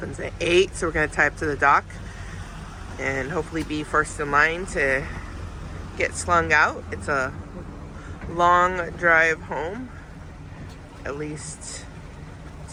at 8, so we're gonna tie up to the dock and hopefully be first in line to get slung out. It's a long drive home, at least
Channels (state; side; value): identical; both; correlation 1.00